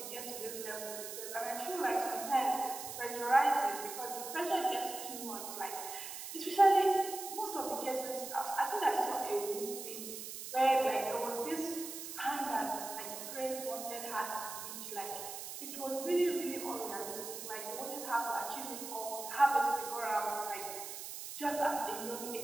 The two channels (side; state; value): right; noise; hiss, 8 dB below the sound